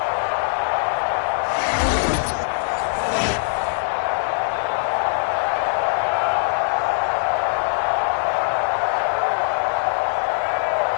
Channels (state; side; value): silent; right; 64 dB below the other